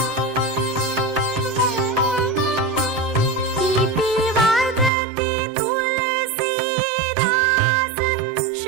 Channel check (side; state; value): left; drops out; at 4.9 s